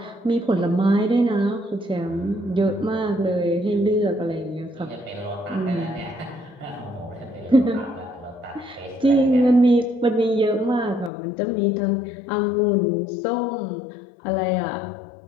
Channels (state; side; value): drops out; right; at 11.1 s